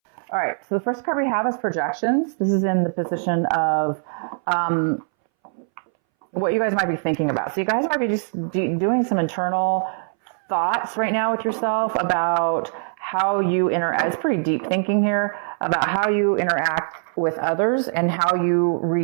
All right, so the first card we have is projections. This is in the position of what you guys might be thinking about. So you guys might be just doing some internal thoughts right now with yourself about how you interact. It's pretty deep thinking here about how you interact with others and how you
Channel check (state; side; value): silent; left; 62 dB below the other